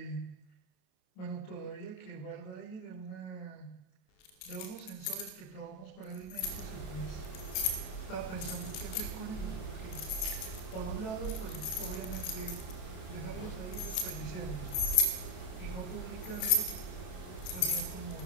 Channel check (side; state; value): right; late; 27 ms